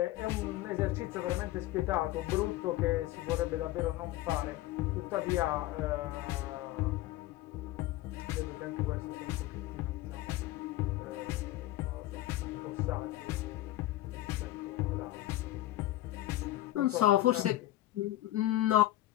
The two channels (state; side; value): quieter; right; 15.5 dB